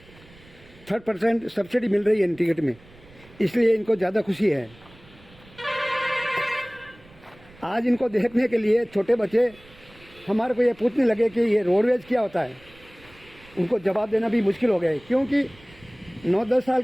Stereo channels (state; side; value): noise; right; rumble, 25 dB below the sound